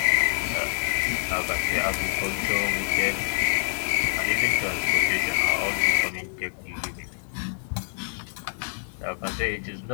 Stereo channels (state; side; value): silent; right; 59 dB below the other